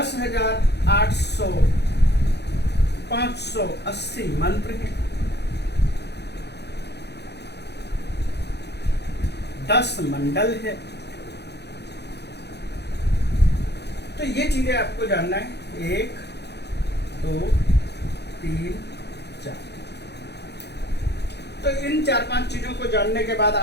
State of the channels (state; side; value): late; right; 0.49 ms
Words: मंत्र हैं, 10 मंडल है। तो ये चीजें आपको जानना है। 1, 2, 3, 4। तो इन 4-5 चीजों को जानने के बाद